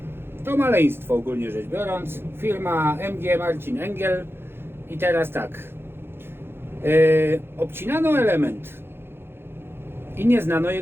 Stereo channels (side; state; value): left; late; 0.11 ms